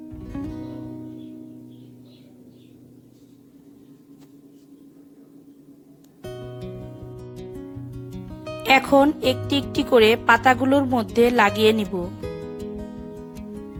এখন একটি একটি করে পাতাগুলোর মধ্যে লাগিয়ে নিব।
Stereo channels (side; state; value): both; identical; correlation 1.00